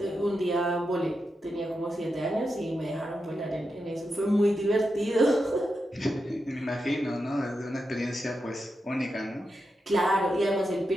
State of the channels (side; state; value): both; normal; correlation 0.87